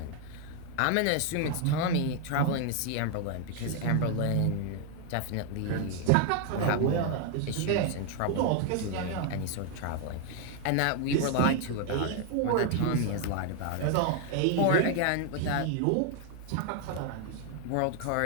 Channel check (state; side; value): different; both; correlation 0.00